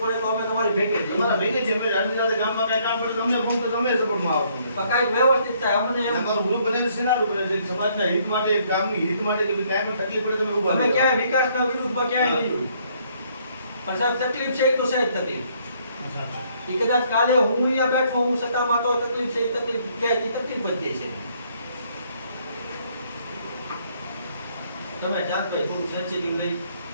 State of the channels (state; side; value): inverted; both; correlation -0.67